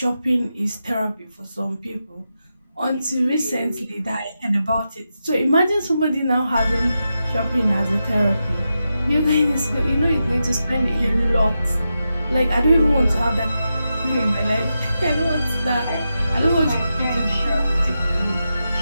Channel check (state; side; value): inverted; both; correlation -0.89